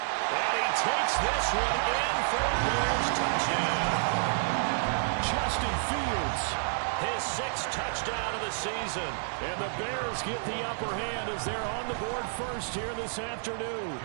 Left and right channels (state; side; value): silent; left; 58 dB below the other